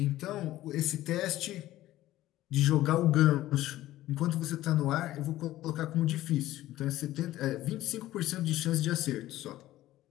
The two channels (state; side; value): quieter; right; 15.1 dB